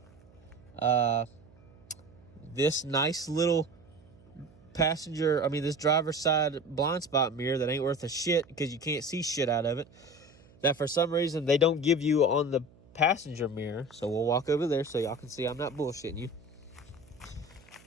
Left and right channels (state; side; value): noise; right; hum, 26 dB below the sound